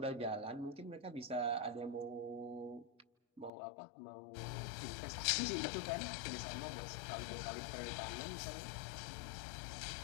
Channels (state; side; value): drops out; right; at 3.5 s